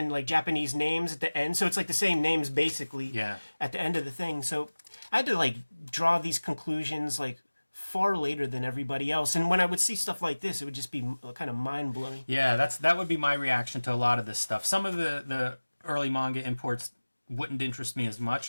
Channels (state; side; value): inverted; both; correlation -1.00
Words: like Japanese names at the end. So it's like the same names basically at the end of the thing. So I had to like draw these conclusions like far later than everybody else. And when I would see stuff like this, it would just be kind of mind blowing. Yeah, that would be my reaction to a lot of this stuff. Some of the early manga imports wouldn't interest me as